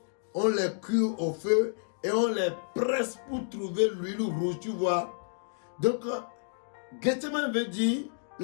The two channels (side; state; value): right; silent; digital silence